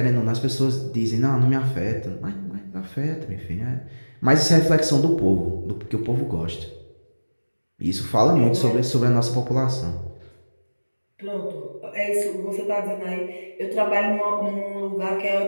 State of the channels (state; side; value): inverted; both; correlation -1.00